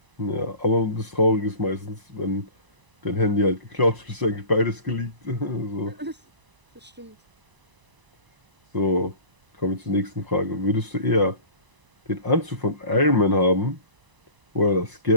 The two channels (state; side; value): late; left; 1.0 ms